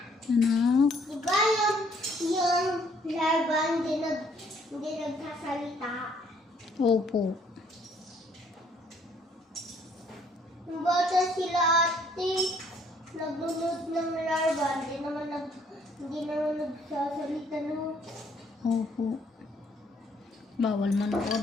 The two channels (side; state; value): both; normal; correlation 0.64